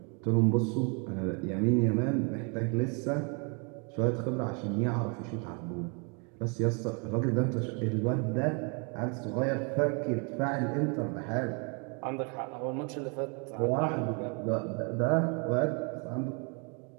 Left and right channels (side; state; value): left; quieter; 35.4 dB